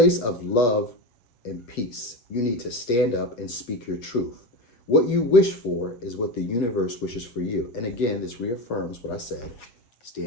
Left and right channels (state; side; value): late; right; 8.2 ms